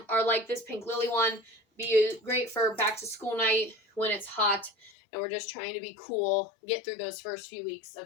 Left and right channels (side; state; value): right; drops out; at 4.9 s